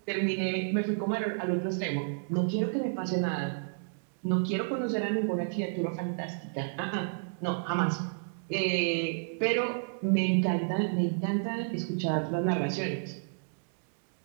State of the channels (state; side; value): silent; left; digital silence